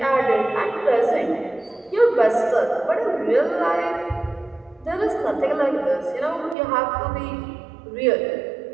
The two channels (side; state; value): left; drops out; at 6.6 s